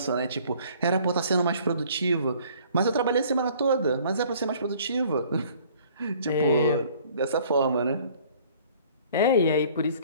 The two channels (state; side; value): inverted; both; correlation -0.55